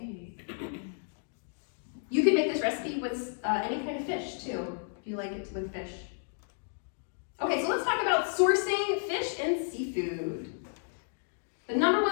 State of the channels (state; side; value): silent; right; digital silence